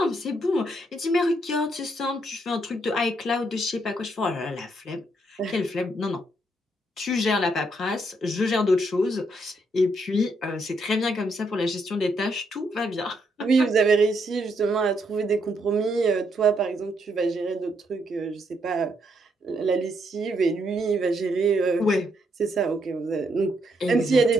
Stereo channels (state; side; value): normal; both; correlation 0.75